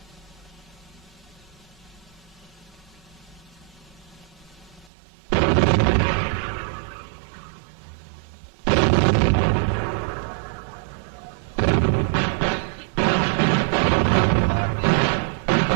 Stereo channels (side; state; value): left; drops out; at 4.9 s